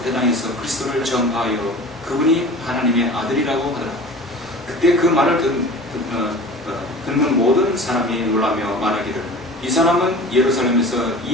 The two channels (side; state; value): both; normal; correlation 0.39